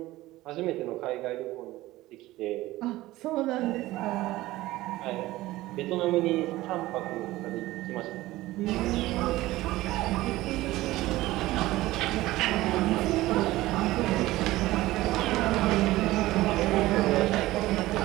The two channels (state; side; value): quieter; left; 17.4 dB